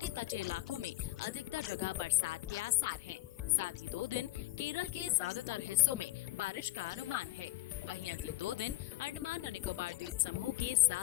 तटीय इलाकों में अधिकतर जगह बरसात के आसार हैं। साथ ही 2 दिन केरल के ज्यादातर हिस्सों में बारिश का अनुमान है। वहीं अगले 2 दिन अंडमान और निकोबार द्वीप समूह के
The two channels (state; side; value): quieter; right; 17.6 dB